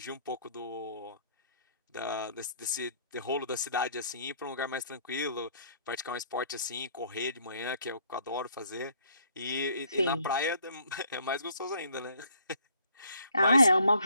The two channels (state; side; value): inverted; both; correlation -0.62